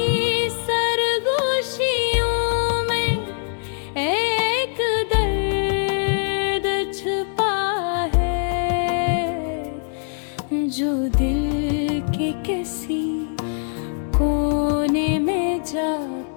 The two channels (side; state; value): right; silent; digital silence